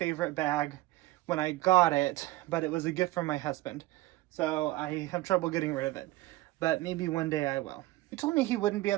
bag when I got it, but it was a gift from my husband. So I have trouble getting rid of it, but maybe one day I will. He told me he wouldn't be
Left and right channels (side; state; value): left; quieter; 18.1 dB